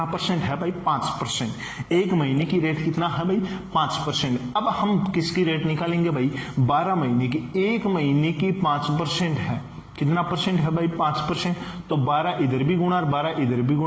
परसेंट है भाई, 5%। 1 महीने की रेट कितना है भाई, 5%। अब हम किसकी रेट निकालेंगे भाई, 12 महीने की। 1 महीने की 5% है, कितना परसेंट है भाई, 5%। तो 12 इधर भी गुणा और 12 इधर भी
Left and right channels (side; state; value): both; identical; correlation 1.00